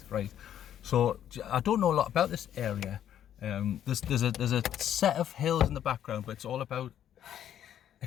right? So I don't know a lot about this area. There's a set of hills in the background, but it's all about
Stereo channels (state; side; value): quieter; right; 10.5 dB